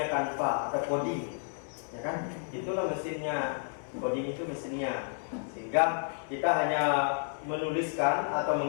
Canva atau coding, ya kan? Itulah mesinnya. Coding itu mesinnya. Sehingga kita hanya menuliskan atau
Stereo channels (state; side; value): silent; right; digital silence